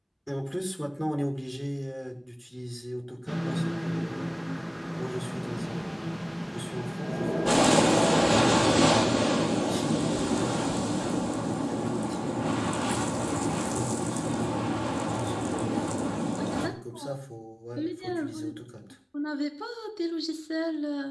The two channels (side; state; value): both; identical; correlation 1.00